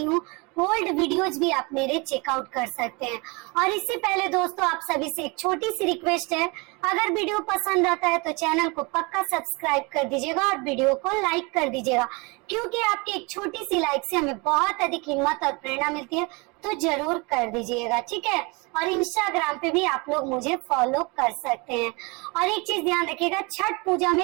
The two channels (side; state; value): left; quieter; 28.3 dB